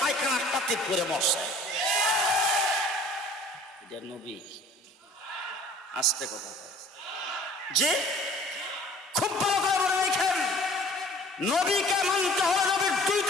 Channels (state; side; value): normal; both; correlation 0.50